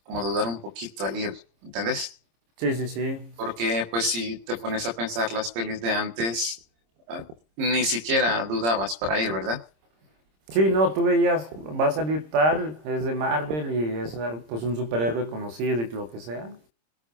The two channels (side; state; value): left; late; 26 ms